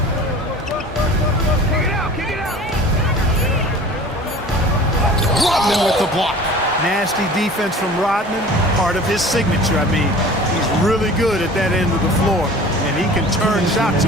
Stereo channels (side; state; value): both; normal; correlation 0.42